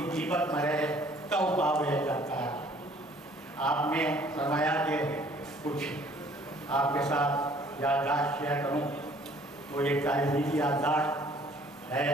जीवत मरे तब पावे करता। आपने फरमाया कि कुछ आपके साथ याददाश्त शेयर करूँ वो एक तारीखी की याददाश्त है।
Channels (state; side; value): normal; both; correlation 0.57